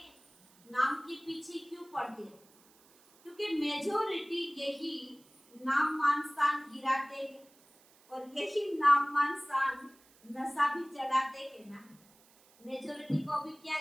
नाम के पीछे क्यों पड़ते हो? क्योंकि मेजोरिटी यही नाम मान शान गिराते हैं, और यही नाम मान शान नशा भी चढ़ाते हैं ना। मेजोरिटी को भी क्या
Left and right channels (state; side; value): noise; right; hiss, 28 dB below the sound